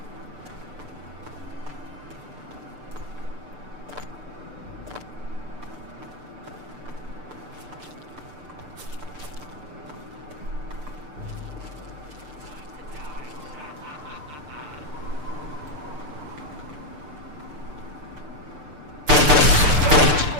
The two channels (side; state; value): left; late; 6.7 ms